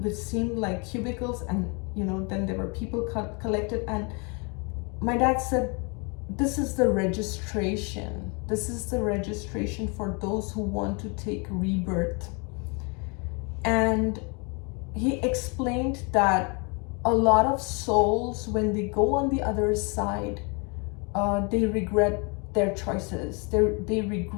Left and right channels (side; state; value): right; quieter; 32.7 dB